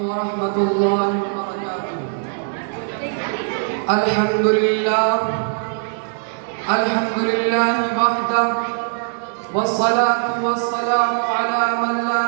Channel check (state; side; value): silent; left; digital silence